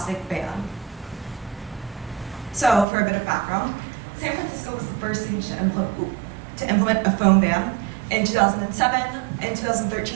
ban. So, for a bit of background, San Francisco was the first city to implement a foam ban in 2007. In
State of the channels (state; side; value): drops out; left; at 2.9 s